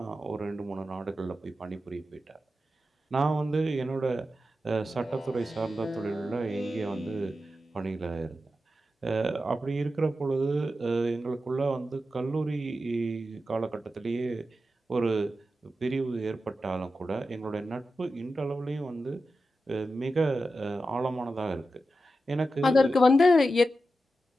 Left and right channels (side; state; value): both; normal; correlation 0.91